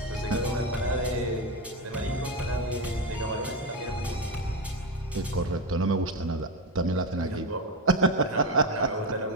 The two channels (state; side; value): normal; both; correlation 0.12